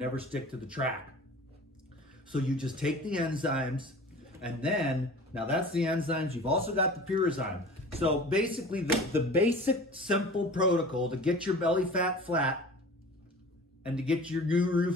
stick to the track. So you just take the enzymes, and then, now that's the enzymes. You've also got the Pyrizyme. So basically the basic simple protocol to get your belly fat flat and to get your guru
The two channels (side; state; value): both; normal; correlation 0.41